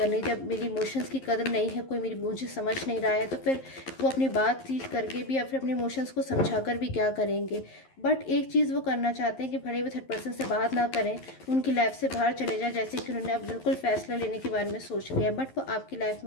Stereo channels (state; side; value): late; right; 11 ms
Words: जब मेरी इमोशंस की कदर नहीं है, कोई मुझे समझ नहीं रहा है, तो फिर वो अपनी बातचीत करके भी या फिर अपने इमोशंस को समझा कर भी क्या करेंगे। बट एक चीज़ वो करना चाहते हैं कि भले वो थर्ड पर्सन से बात ना करें, उनकी लाइफ से बाहर चले जाए, जैसे कि उन्होंने अब बिल्कुल फैसला लेने के बारे में सोच लिया, बट वो आपकी लाइफ